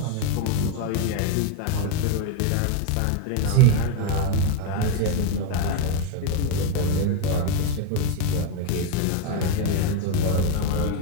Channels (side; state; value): both; different; correlation 0.02